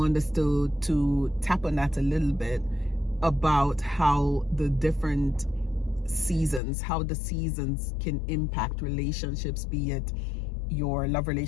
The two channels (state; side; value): drops out; right; at 6.6 s